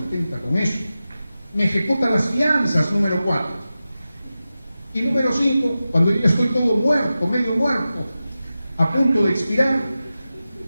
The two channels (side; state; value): both; inverted; correlation -0.94